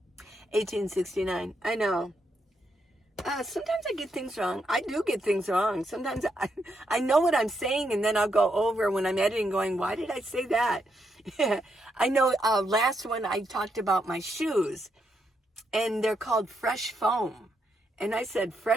1869. I know. Sometimes I get things wrong. I do get things wrong. Sometimes I know what I'm saying, and then I'll go over when I'm editing going, why did I say that? I know last one I talked about my shoes, and they're called Fresh Foam. And I said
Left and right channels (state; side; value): normal; both; correlation 0.80